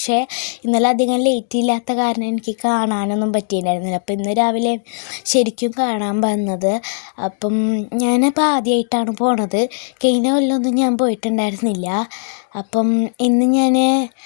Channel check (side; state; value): right; silent; digital silence